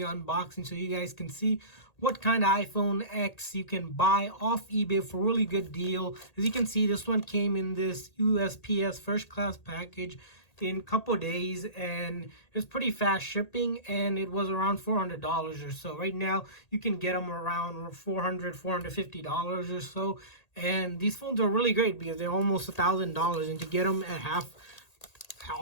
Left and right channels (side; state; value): right; late; 1.8 ms